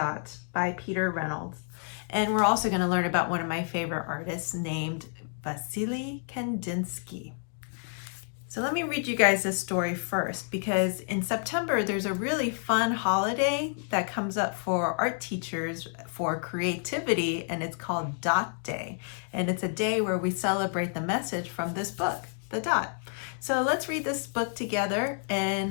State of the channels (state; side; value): silent; right; 58 dB below the other